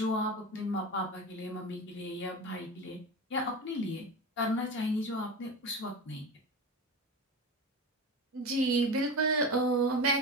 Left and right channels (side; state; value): both; normal; correlation 0.26